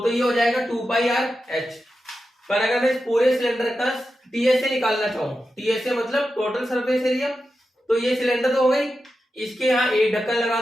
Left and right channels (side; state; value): both; normal; correlation 0.90